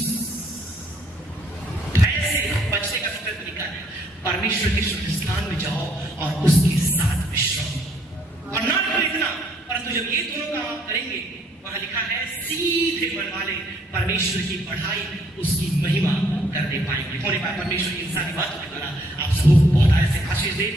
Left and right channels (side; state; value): both; normal; correlation 0.66